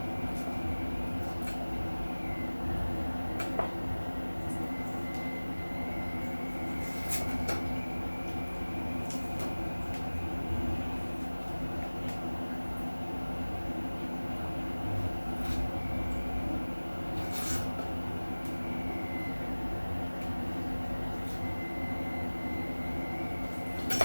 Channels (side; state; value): both; inverted; correlation -1.00